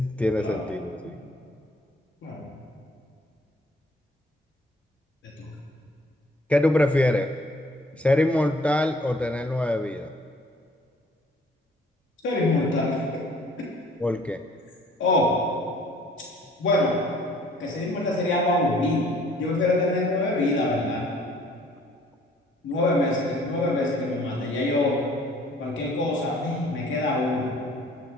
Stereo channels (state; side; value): normal; both; correlation 0.57